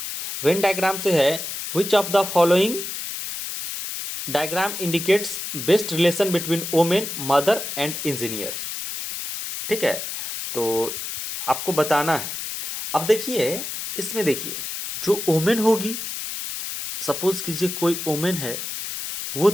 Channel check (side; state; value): left; noise; hiss, 6 dB below the sound